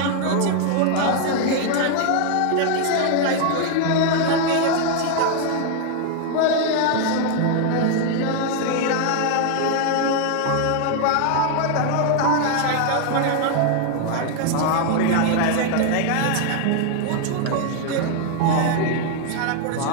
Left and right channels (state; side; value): different; both; correlation 0.00